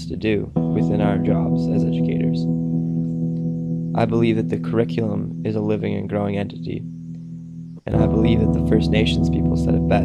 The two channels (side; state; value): both; identical; correlation 1.00